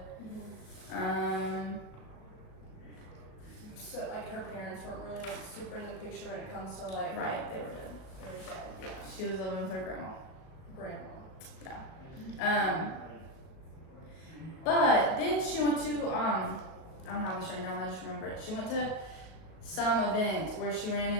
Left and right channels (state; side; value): late; right; 38 ms